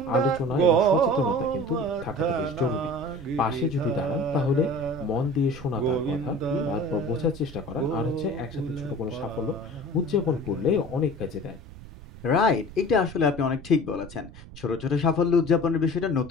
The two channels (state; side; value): noise; right; rumble, 16 dB below the sound